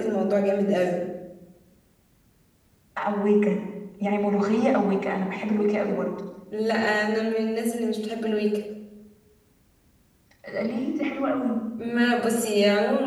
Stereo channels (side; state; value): both; identical; correlation 1.00